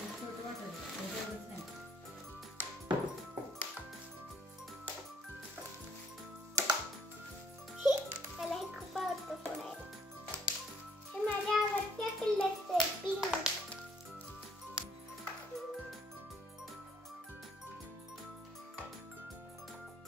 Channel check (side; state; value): both; normal; correlation 0.65